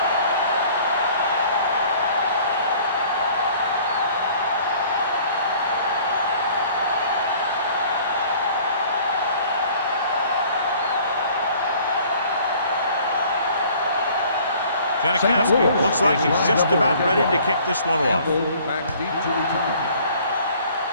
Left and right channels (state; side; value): inverted; both; correlation -0.53